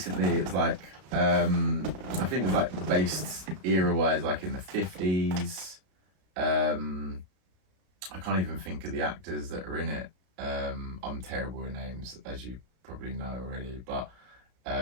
It was like I think it was like based era wise like in the 50s. I can't even think of the actors that are in it. I'm terrible with names, as you probably know already, but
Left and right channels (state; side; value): late; left; 32 ms